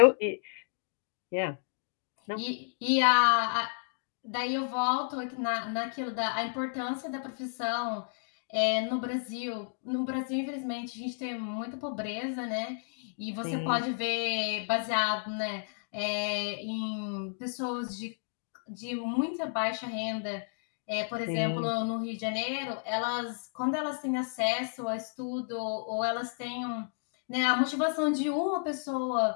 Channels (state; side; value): silent; right; digital silence